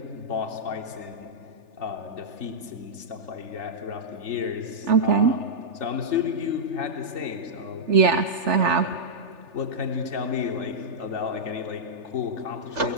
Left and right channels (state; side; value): late; left; 3.4 ms